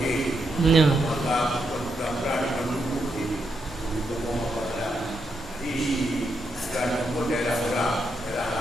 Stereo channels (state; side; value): normal; both; correlation 0.81